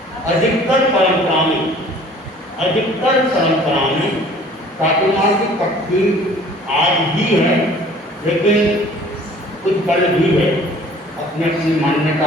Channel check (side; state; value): both; normal; correlation 0.51